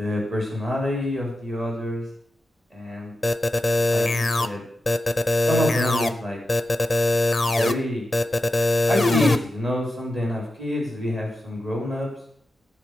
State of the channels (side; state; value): both; normal; correlation 0.91